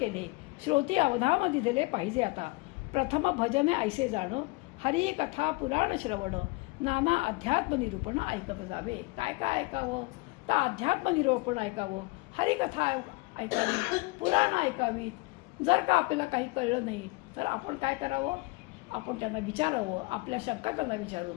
श्रोती अवधाम दिले पाहिजे आता. प्रथम भजने ऐसे जाणं हरी कथा पुराण श्रवण नाना अध्यात्म निरूपण ऐकत जावे. काय काय ऐकावं तर अध्यात्म निरूपण ऐकावं, हरिकथा ऐकावी, पुराण ऐकावीत. जर का आपल्याला काही कळलं नाही तर आपण काय करावं, आपण त्यांना विचारावं, आपल्या शंका त्यांना विचारून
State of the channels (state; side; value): quieter; right; 25.3 dB